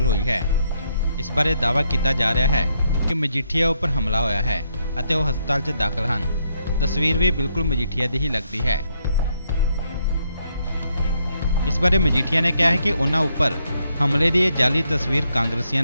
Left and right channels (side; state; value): both; inverted; correlation -0.76